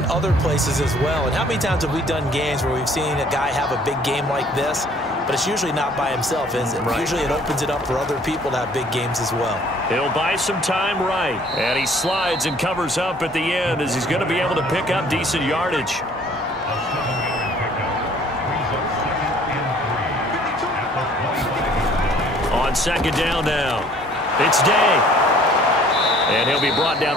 other places as well. And how many times have we done games where we've seen a guy have a big game like this, but it's usually not by himself, is it? Right. Usually it opens it up for other people to have big games as well. He'll buy some time right. And he slides and covers up at the end as he's going to be able to pick up decent yardage. On 2nd down now. It's Day. And he'll be brought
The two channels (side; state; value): both; normal; correlation 0.56